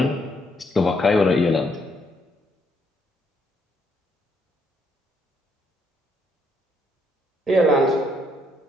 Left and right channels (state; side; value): normal; both; correlation 0.72